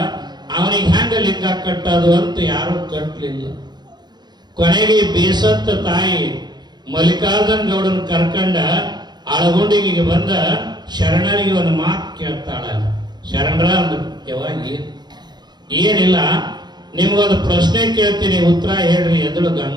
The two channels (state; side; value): late; left; 0.21 ms